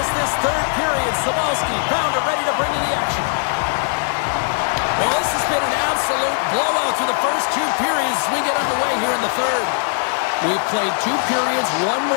this third period. Sabalski, Pounder ready to bring you the action. Well, this has been an absolute blowout through the first 2 periods as we get underway here in the third. We've played 2 periods, 1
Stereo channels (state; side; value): silent; right; 66 dB below the other